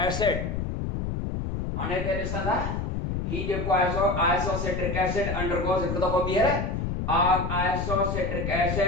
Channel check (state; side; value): noise; left; rumble, 2 dB below the sound